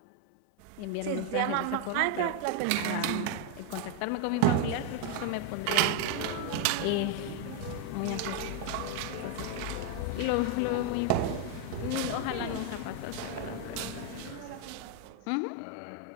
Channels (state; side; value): different; both; correlation 0.01